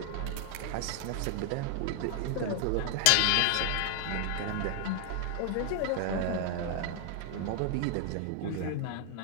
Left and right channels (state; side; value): different; both; correlation 0.00